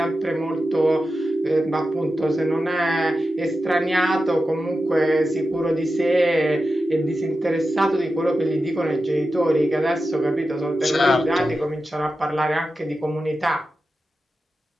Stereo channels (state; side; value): normal; both; correlation 0.91